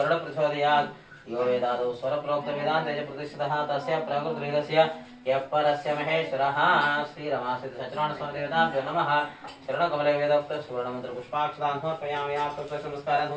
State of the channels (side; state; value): both; identical; correlation 1.00